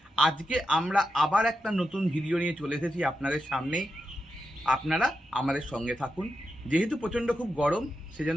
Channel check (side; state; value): both; normal; correlation 0.87